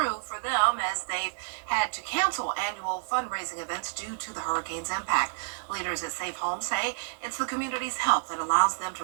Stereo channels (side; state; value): left; silent; digital silence